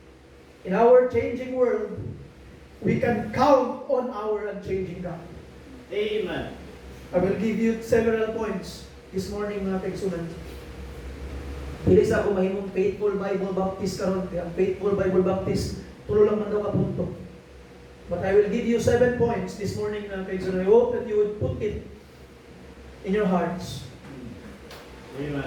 in our changing world, we can count on our unchanging God. Amen. I will give you several points this morning, mga kaigsunan. Dili sa ako mahimong faithful Bible Baptist karon, kaya ang faithful Bible Baptist tulo lang man daw ka punto. But I will give you 7 points this morning, mga kaigsunan. I hope that you would put it in your hearts.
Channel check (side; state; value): both; identical; correlation 1.00